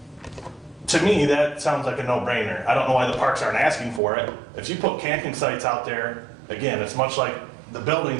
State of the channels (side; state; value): left; drops out; at 4.0 s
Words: To me, that sounds like a no-brainer. I don't know why the parks aren't asking for it. If you put camping sites out there, again, it's much like the